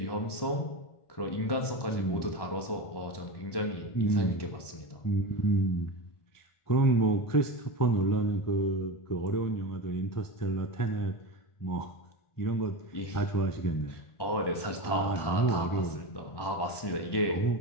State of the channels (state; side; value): late; right; 1.1 ms